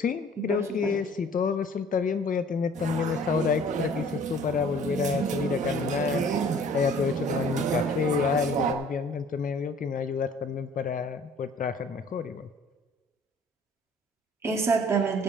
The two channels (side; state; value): both; normal; correlation 0.52